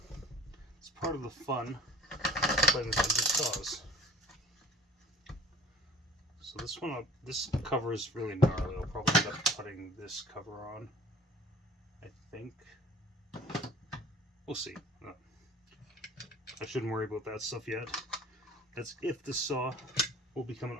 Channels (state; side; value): normal; both; correlation 0.47